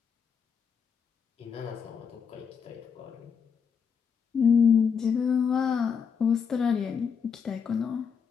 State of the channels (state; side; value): quieter; right; 6.6 dB